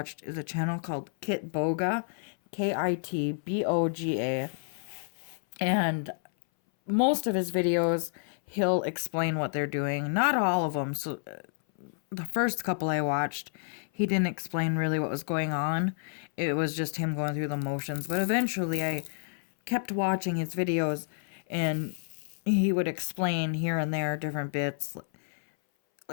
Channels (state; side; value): silent; right; 58 dB below the other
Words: is a channel called Kitboga, Kitboga. And most of his videos, he'll explain what they're doing. Not all of them. So the first couple I watched, he didn't explain really what was going on. It was just him going through the motions. But eventually I kept watching his videos, and he would explain here and there different bits.